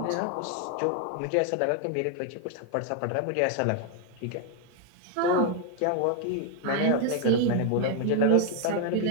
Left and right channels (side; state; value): both; different; correlation 0.00